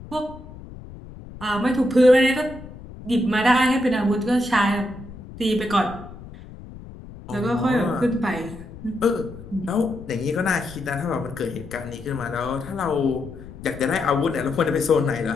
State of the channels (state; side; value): noise; left; rumble, 15 dB below the sound